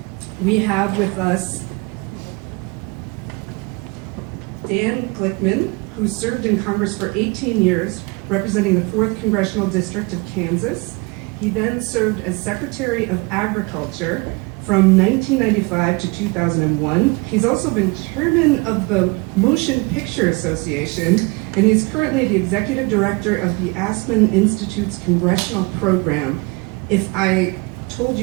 We have with us Dan Glickman, who served in Congress for 18 years, representing the 4th Congressional District of Kansas. He then served as Secretary of Agriculture from 1995 to 2001. He's also been chairman of the Motion Picture Association, and he's currently the executive director of the Aspen Institute's congressional program. If I told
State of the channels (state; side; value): quieter; left; 27.8 dB